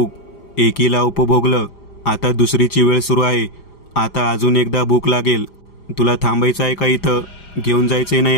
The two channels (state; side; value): late; right; 5.0 ms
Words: एकीला उपभोगलं, आता दुसरीची वेळ सुरू आहे. आता अजून एकदा भूक लागेल. तुला थांबायचं आहे का इथं? घेऊन जायचंय ना